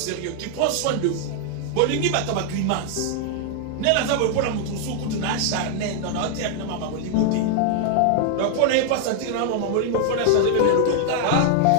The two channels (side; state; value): both; different; correlation 0.00